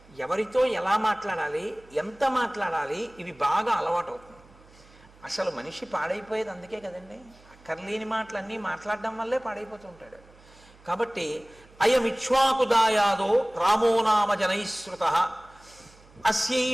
ఎవరితో ఎలా మాట్లాడాలి, ఎంత మాట్లాడాలి, ఇవి బాగా అలవాటు అవుతుంది. అసలు మనిషి పాడైపోయేది అందుకే కదండి, అక్కర్లేని మాటలన్నీ మాట్లాడడం వల్లే పాడైపోతూ ఉంటాడు. కాబట్టి అయమిక్ష్వాకుదాయాదో రామో నామ జనైశ్రుత అస్యై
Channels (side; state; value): right; noise; hum, 26 dB below the sound